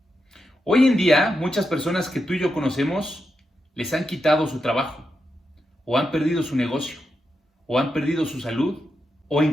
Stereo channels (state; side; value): normal; both; correlation 0.86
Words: Hoy en día, muchas personas que tú y yo conocemos les han quitado su trabajo, o han perdido su negocio, o han perdido su salud, o